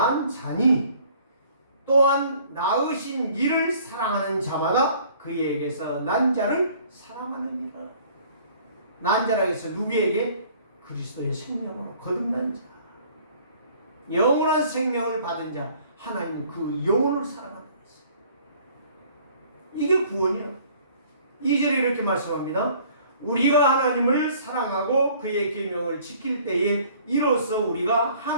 자니 또한 낳으신 이를 사랑하는 자마다 그에게서 난 자를 사랑하느니라. 난 자라고 해서 누구에게? 그리스도의 생명으로 거듭난 자, 영원한 생명을 받은 자, 하나님 그 영혼을 사랑한다. 이게 구원이에요. 2절에 이렇게 말씀합니다. 우리가 하나님을 사랑하고 그의 계명을 지킬 때에 이로써 우리가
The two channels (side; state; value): both; inverted; correlation -0.55